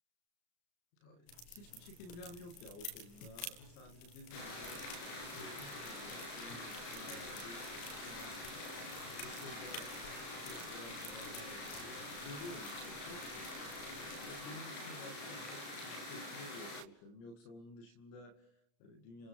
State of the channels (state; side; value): late; right; 34 ms